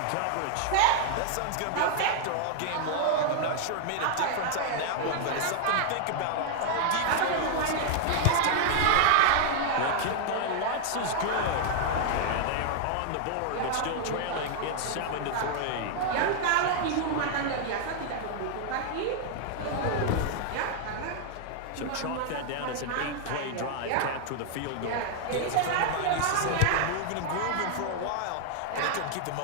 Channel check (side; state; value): both; different; correlation 0.00